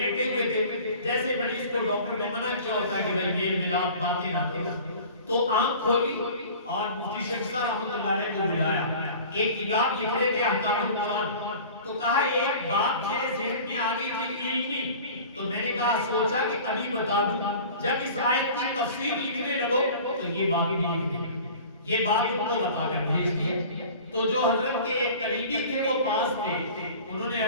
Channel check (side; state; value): both; inverted; correlation -0.42